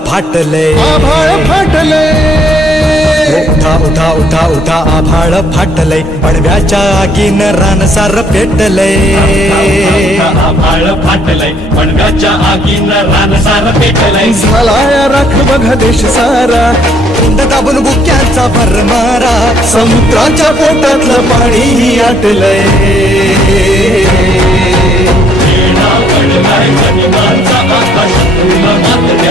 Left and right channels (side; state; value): both; normal; correlation 0.65